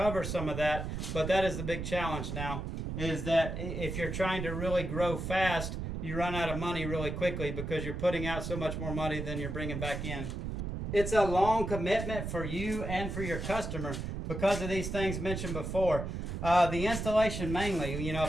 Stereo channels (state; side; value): noise; right; rumble, 4 dB below the sound